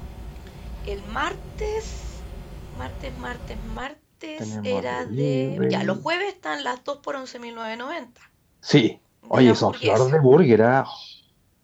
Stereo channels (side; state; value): both; identical; correlation 1.00